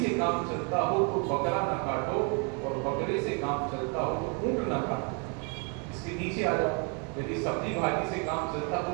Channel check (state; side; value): quieter; left; 34.7 dB